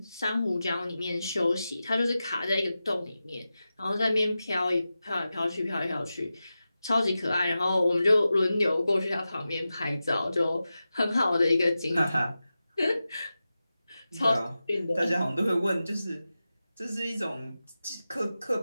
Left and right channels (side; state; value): both; inverted; correlation -0.93